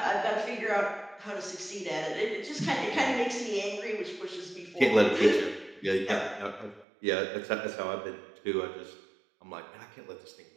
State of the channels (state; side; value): drops out; left; at 6.9 s